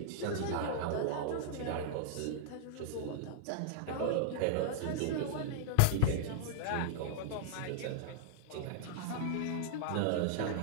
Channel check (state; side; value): different; both; correlation -0.01